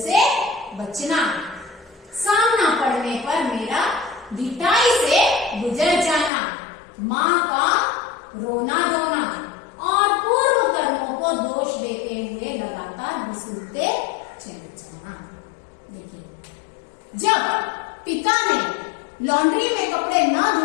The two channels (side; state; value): right; drops out; at 6.3 s